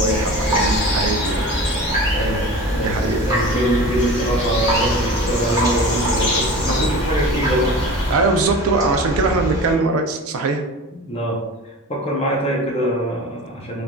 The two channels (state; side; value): normal; both; correlation 0.36